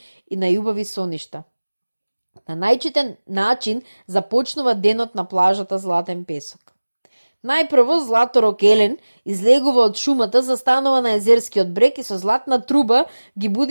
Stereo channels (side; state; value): both; inverted; correlation -1.00